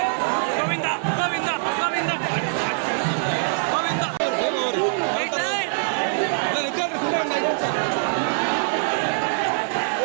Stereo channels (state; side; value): silent; left; digital silence